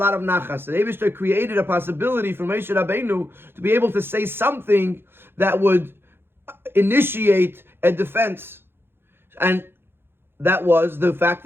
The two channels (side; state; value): left; late; 0.11 ms